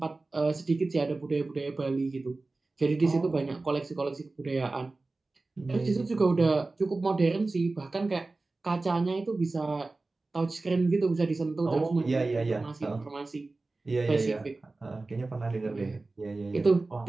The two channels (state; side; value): quieter; left; 3.4 dB